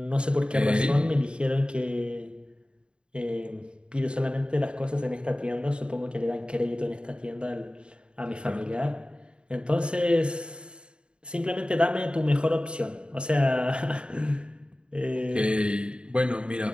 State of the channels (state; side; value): late; left; 0.053 ms